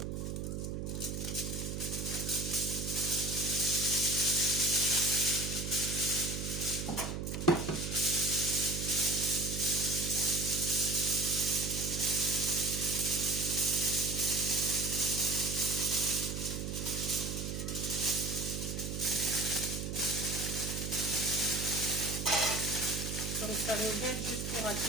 Donc ça nous aide juste pour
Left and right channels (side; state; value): right; noise; hum, 4 dB below the sound